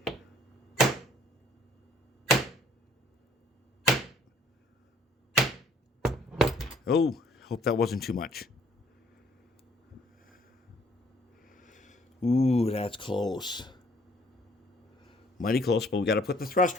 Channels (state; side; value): normal; both; correlation 0.60